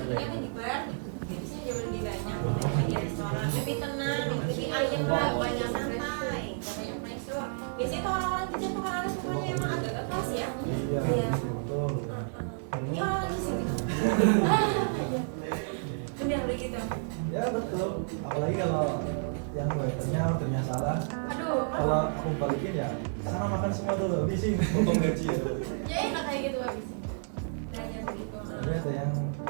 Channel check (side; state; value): left; silent; digital silence